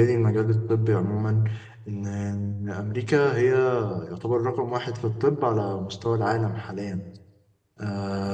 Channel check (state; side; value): identical; both; correlation 1.00